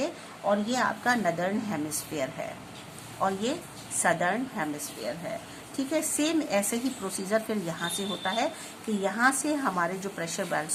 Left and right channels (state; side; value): identical; both; correlation 1.00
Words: और ये आपका नदर्न हेमिस्फीयर है और ये सदर्न हेमिस्फीयर है। ठीक है, सेम ऐसे ही प्रोसीजर फिर यहाँ से होता है कि यहाँ से हमारे जो प्रेशर